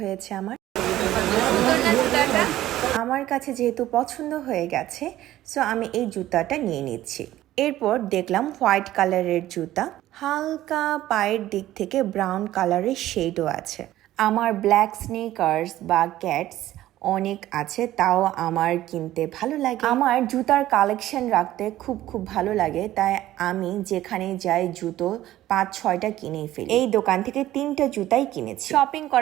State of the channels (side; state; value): left; quieter; 14.3 dB